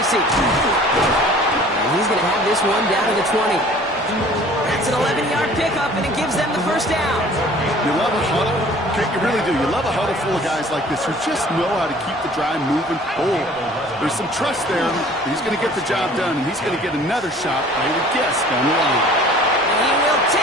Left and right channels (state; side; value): normal; both; correlation 0.50